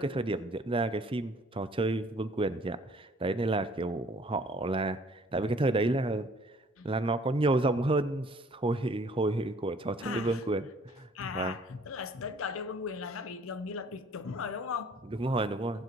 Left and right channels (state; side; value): normal; both; correlation 0.56